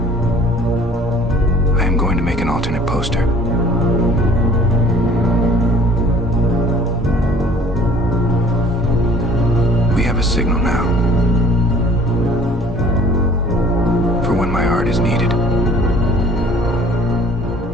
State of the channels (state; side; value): normal; both; correlation 0.52